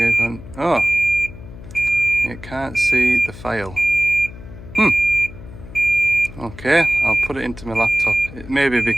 on. Oh, it can't see the file. Okay, I'll put it into my laptop. It may be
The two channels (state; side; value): noise; left; hum, 15 dB below the sound